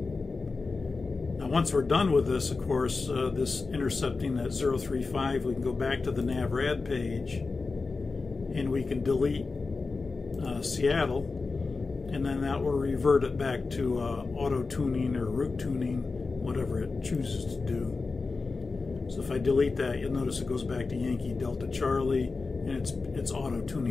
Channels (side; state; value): right; quieter; 4.1 dB